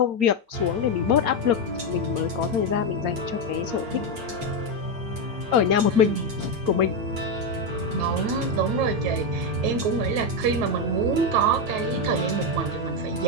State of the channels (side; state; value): left; late; 8.9 ms